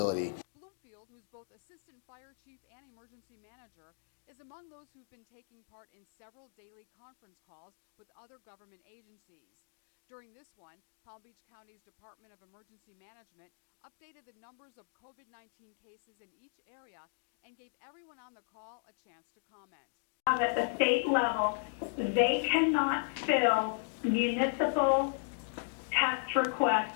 Bloomfield, who's both assistant fire chief and emergency manager, is among those who've been taking part in several daily conference calls with other government agencies. During this one, Palm Beach County's Department of Emergency Management updated the numbers of COVID-19 cases in each area and gave everyone on the call a chance to comment. At the state level, they cannot fill municipal test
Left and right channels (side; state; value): right; silent; digital silence